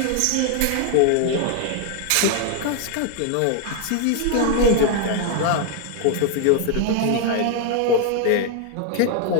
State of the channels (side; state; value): both; different; correlation 0.00